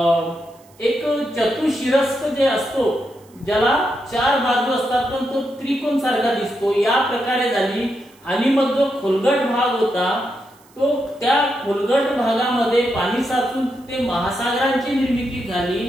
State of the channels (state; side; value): noise; right; hiss, 30 dB below the sound